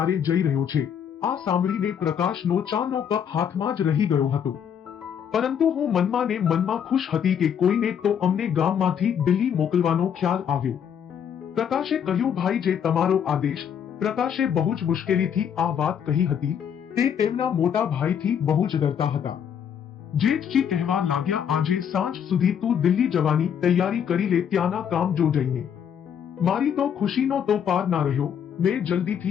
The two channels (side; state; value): right; quieter; 8.3 dB